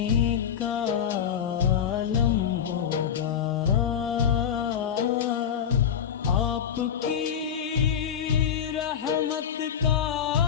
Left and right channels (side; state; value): right; quieter; 8.3 dB